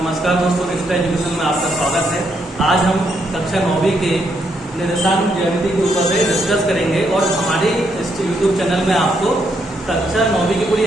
दोस्तों, रिश्ता एजुकेशन में आपका स्वागत है। आज हम कक्षा 9वीं के निर्देशांक ज्यामिति के ऊपर से डिस्कस करेंगे और हमारे इस यूट्यूब चैनल में आपको कक्षा 9वीं की पूरी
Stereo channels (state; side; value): normal; both; correlation 0.76